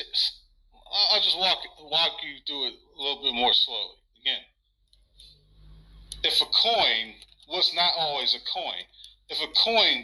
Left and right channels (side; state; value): both; identical; correlation 1.00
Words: walk you through it a little bit more slowly. Again, if a coin was not always a coin, if a